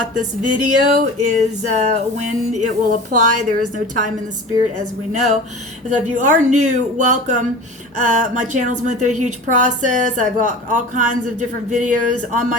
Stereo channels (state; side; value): normal; both; correlation 0.36